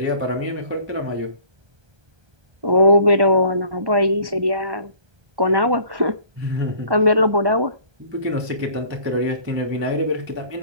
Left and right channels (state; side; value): late; left; 1.2 ms